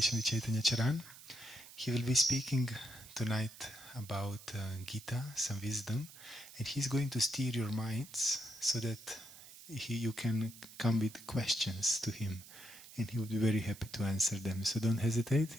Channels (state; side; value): noise; right; hiss, 17 dB below the sound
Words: with Chaitanya Charan. He will be speaking tonight about Gita, some wisdom, and he's going to steer your minds so that you can come with questions to him, and he will be very happy to answer them. So don't hesitate